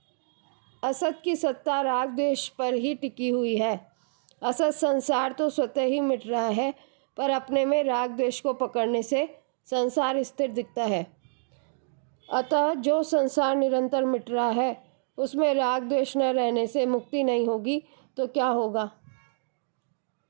असत की सत्ता राग द्वेष पर ही टिकी हुई है। असत संसार तो स्वतः ही मिट रहा है, पर अपने में राग द्वेष को पकड़ने से संसार स्थिर दिखता है। अतः जो संसार निरंतर मिट रहा है, उसमें राग द्वेष न रहने से मुक्ति नहीं होगी तो क्या होगा?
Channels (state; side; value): silent; left; digital silence